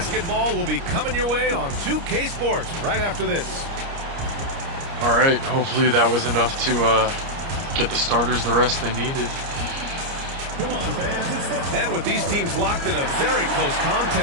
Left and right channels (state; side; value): late; left; 29 ms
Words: will be coming your way on 2K Sports right after this. All right. Hopefully that was enough to get the starters the rest they needed. And with these teams locked in a very close